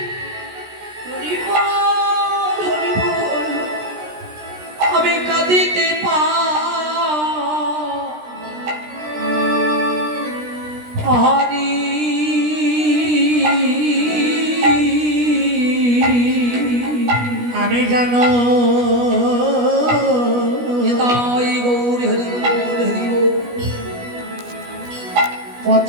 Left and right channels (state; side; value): late; left; 17 ms